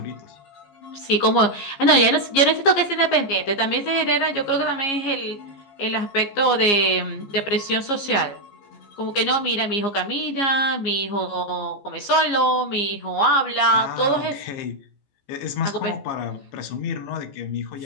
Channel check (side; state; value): right; late; 15 ms